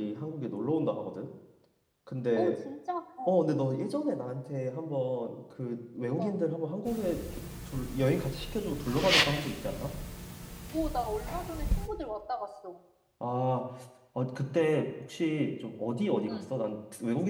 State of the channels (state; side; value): identical; both; correlation 1.00